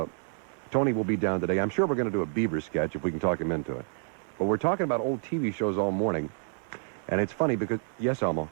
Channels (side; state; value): left; silent; 59 dB below the other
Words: Tony will be down today. I'm sure we're going to do a Beaver sketch if we can talk him into it. But we're talking about old TV shows all morning. And it's funny because, yes, Elmo.